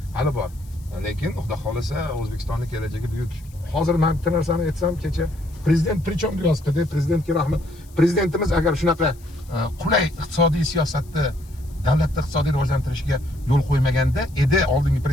bor. Lekin xudo xolisa O'zbekistonning kelajagi buyuk. Hozir men bitta narsani aytsam, kecha prezident prichom deyapti-da, prezidentga rahmat. Prezidentimiz agar shunaqa qulay iqtisodiy siyosatni davlatni iqtisodiy rivojlantirishiga yo'l qo'ymaganda edi, oldingi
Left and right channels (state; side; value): noise; left; hiss, 27 dB below the sound